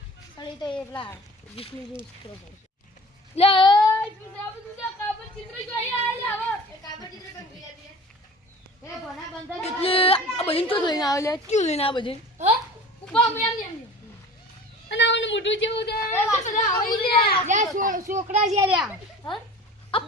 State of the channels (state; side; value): normal; both; correlation 0.41